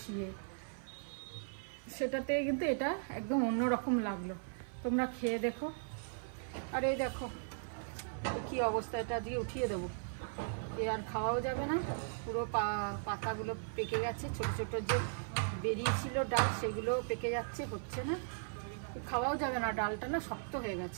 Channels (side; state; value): left; silent; 53 dB below the other